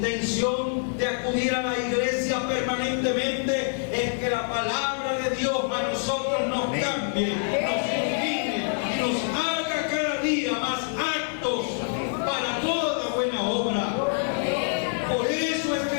de acudir a la iglesia permanentemente es que la palabra de Dios a nosotros nos cambie, nos ilumine y nos haga cada día más aptos para toda buena obra. Por eso es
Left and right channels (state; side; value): silent; right; 55 dB below the other